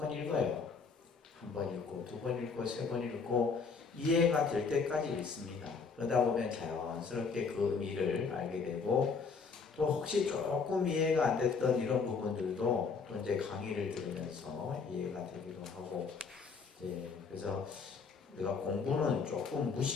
읽어요. 한 번 읽고, 두 번 읽고, 세 번 읽고 이해가 될 때까지 읽습니다. 그러다 보면 자연스럽게 그 의미를 알게 되고 또 혹시 조금 이해가 안 됐던 이런 부분들도 또 이제 강의를 들으면서 이해가 되기도 하고 그래서 우리가 공부는 조금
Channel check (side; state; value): right; quieter; 5.1 dB